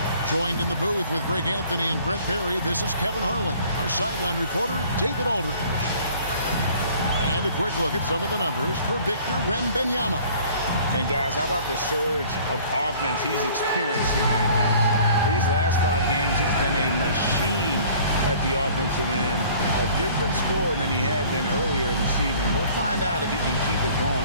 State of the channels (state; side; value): inverted; both; correlation -0.52